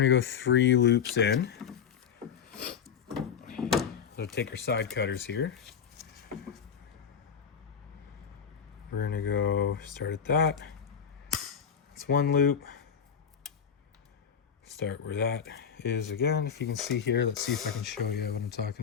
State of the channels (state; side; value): quieter; right; 7.5 dB